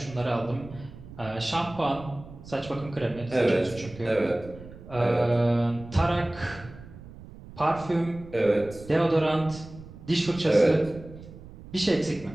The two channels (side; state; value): right; noise; rumble, 17 dB below the sound